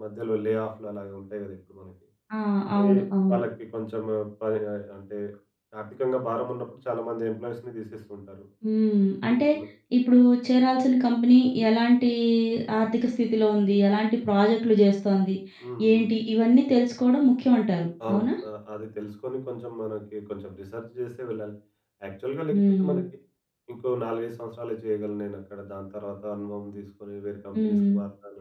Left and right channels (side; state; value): both; identical; correlation 1.00